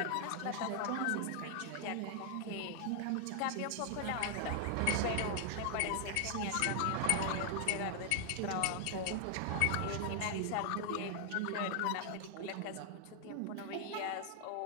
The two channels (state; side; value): different; both; correlation 0.00